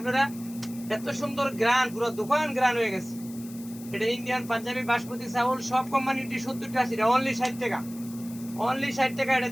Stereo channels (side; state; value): left; noise; hiss, 18 dB below the sound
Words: এত সুন্দর গ্রান, পুরো দোকান গ্রান হয়ে গেছে। এটা ইন্ডিয়ান পাঞ্জাবি বাসমতি চাউল, সব কোম্পানিটি 70-80 টাকা, অনলি 60 টাকা, অনলি 60 টাকা। এটা